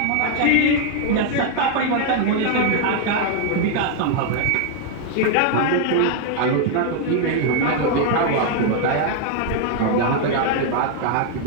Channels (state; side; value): different; both; correlation 0.00